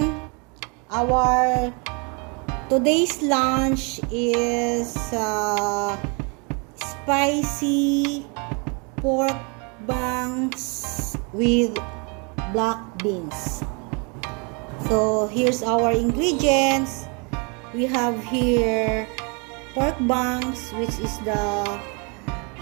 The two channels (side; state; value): left; quieter; 33.6 dB